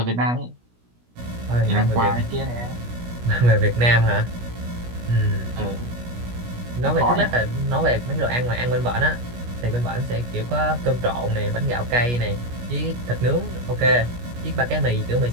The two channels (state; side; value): late; left; 17 ms